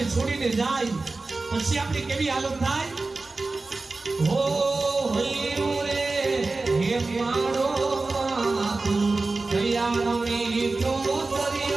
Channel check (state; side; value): quieter; left; 3.5 dB